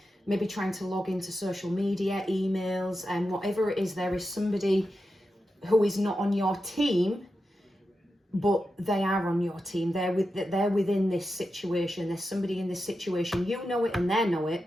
maybe trying to log into social media, emails, and whatever it is, there is somebody who is not on your team, but they are on your team. They're within this situation. There's somebody in this situation. You know it and they know it.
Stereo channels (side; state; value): both; normal; correlation 0.89